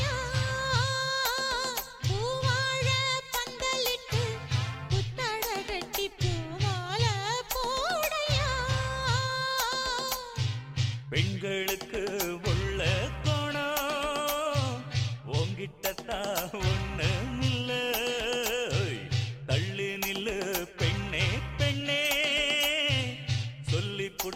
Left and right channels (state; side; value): identical; both; correlation 1.00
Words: பூவாழ பந்தலிட்டு புத்தட கட்டி பூமால போடையா பெண்களுக்கு உள்ள கோணம் உங்கிட்டத்தா ஒண்ணுமில்ல தள்ளி நில்லு பெண்ணே பெண்ணே சொல்லி